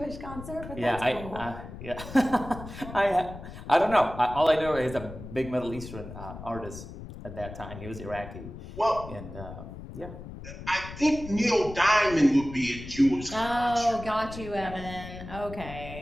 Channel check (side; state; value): left; noise; rumble, 12 dB below the sound